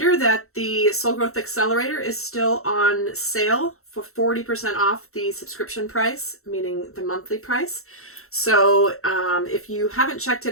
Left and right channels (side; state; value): right; late; 0.63 ms